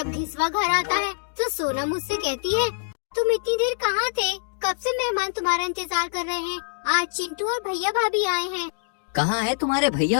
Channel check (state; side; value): silent; right; digital silence